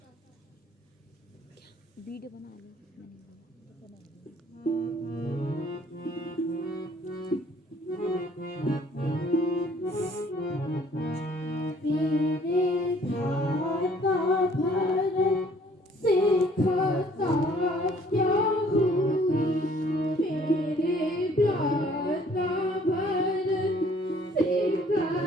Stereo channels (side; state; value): both; normal; correlation 0.58